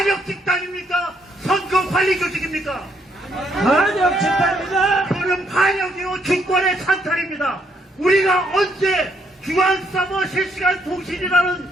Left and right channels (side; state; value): both; normal; correlation 0.72